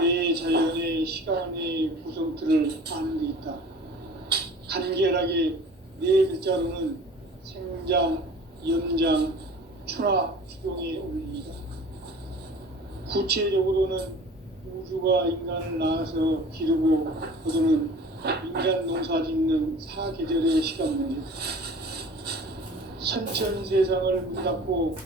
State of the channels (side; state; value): both; normal; correlation 0.43